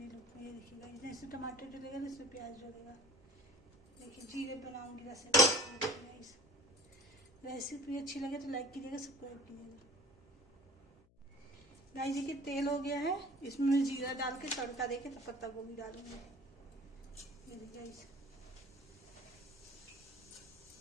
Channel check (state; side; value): noise; left; hum, 30 dB below the sound